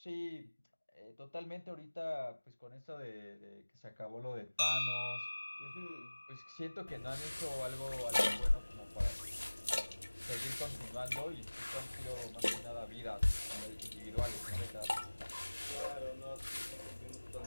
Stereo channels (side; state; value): both; inverted; correlation -1.00